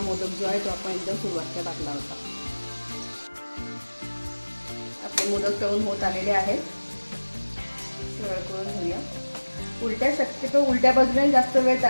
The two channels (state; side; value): inverted; both; correlation -1.00